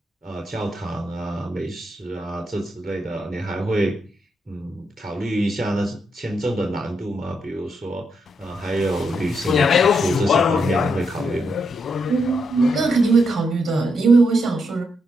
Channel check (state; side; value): normal; both; correlation 0.80